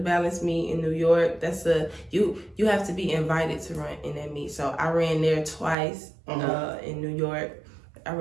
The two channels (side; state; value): left; drops out; at 5.8 s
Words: meet in New York. That's you have to be invited to run in that meet. So I ran there twice in New York. I